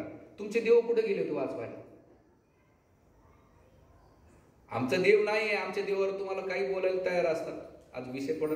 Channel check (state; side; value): identical; both; correlation 1.00